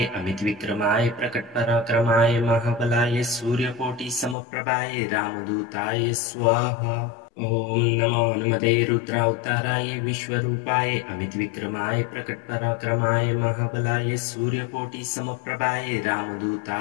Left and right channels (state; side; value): drops out; right; at 4.4 s